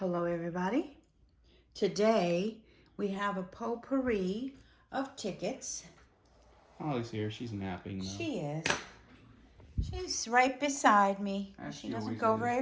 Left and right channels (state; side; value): identical; both; correlation 1.00